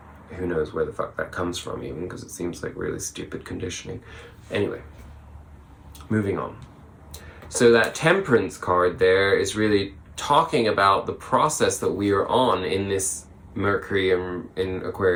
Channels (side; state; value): both; identical; correlation 1.00